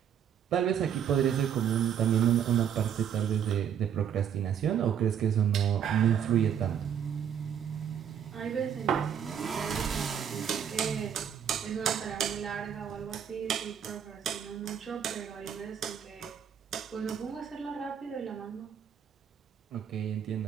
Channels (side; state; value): left; quieter; 8.6 dB